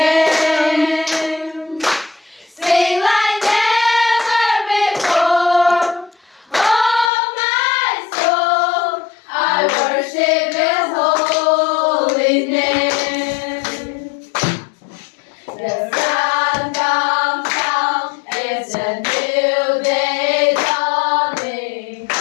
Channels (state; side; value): drops out; right; at 7.1 s